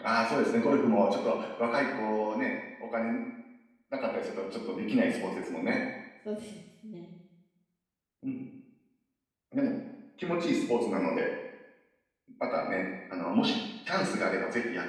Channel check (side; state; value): both; identical; correlation 1.00